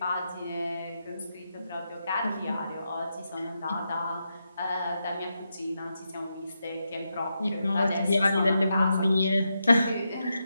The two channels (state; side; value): inverted; both; correlation -0.85